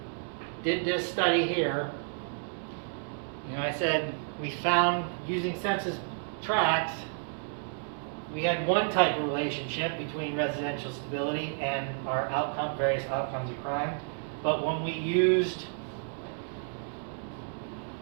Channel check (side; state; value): left; silent; 57 dB below the other